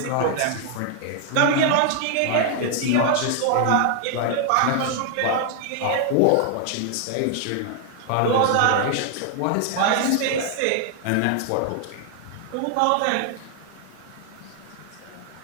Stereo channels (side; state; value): both; different; correlation 0.00